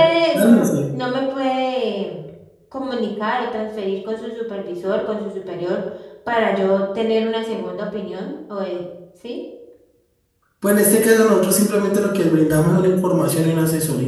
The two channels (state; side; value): identical; both; correlation 1.00